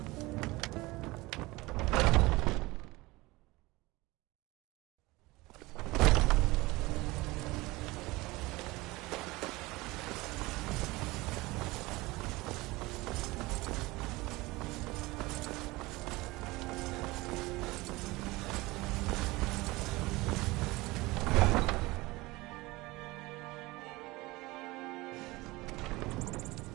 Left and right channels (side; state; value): left; quieter; 21.3 dB